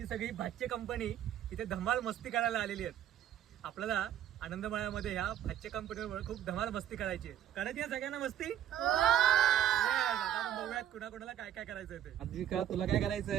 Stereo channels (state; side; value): quieter; left; 10.9 dB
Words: सगळी भाच्चे कंपनी इथे धमाल मस्ती करायला आलेली आहेत। आपल्याला आनंदमाळ्यामध्ये ह्या भाच्चे कंपनीवर खूप धमाल मस्ती करायची आहे। करायची आहे सगळ्यांना मस्ती? आता बघूयात कुणाकुणाला काय काय करायचं ते। आद्विका तुला काय